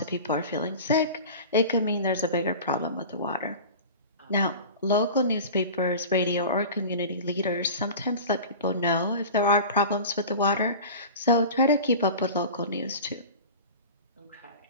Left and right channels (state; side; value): inverted; both; correlation -0.35